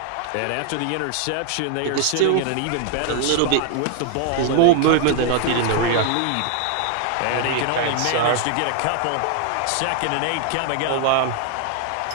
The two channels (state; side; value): different; both; correlation 0.00